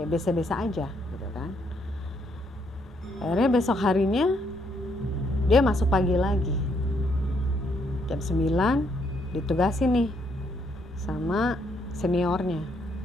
biasa-biasa aja gitu kan. Akhirnya besok harinya dia masuk pagi lagi. Jam 9 ditugasi nih sama seniornya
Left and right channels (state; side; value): normal; both; correlation 0.72